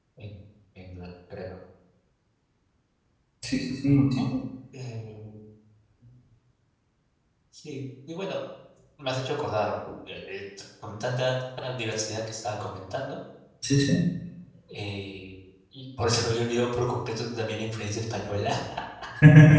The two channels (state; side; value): identical; both; correlation 1.00